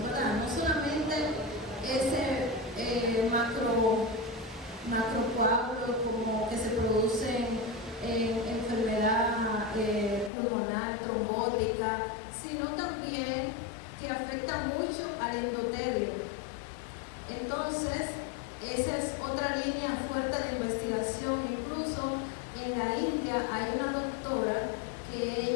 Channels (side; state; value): right; drops out; at 10.3 s